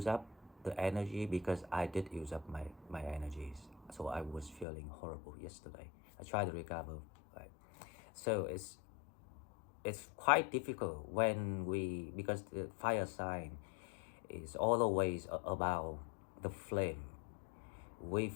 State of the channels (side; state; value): right; drops out; at 4.7 s